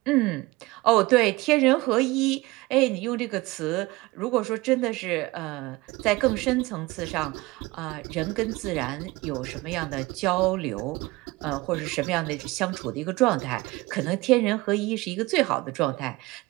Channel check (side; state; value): left; quieter; 21.5 dB